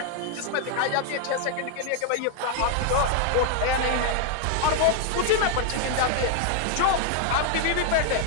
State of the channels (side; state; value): both; different; correlation 0.00